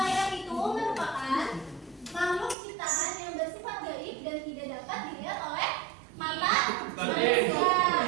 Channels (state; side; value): drops out; left; at 2.6 s